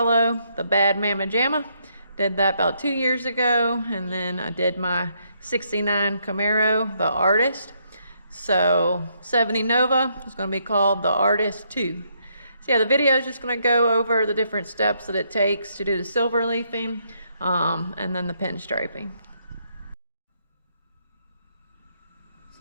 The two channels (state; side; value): inverted; both; correlation -0.74